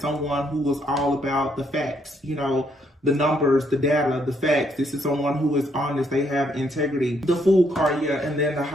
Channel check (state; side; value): normal; both; correlation 0.72